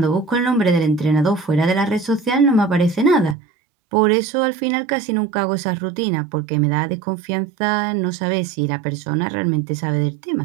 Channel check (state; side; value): drops out; left; at 3.4 s